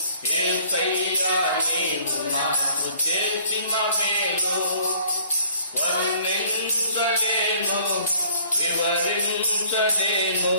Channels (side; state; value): both; inverted; correlation -0.57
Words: యేసయ్యా నీవు నాకు చేసిన మేలు. వర్ణించలేను, వివరించలేను